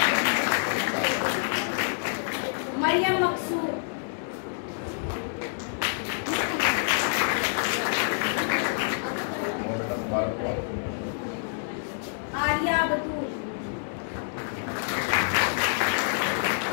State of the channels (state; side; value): silent; right; digital silence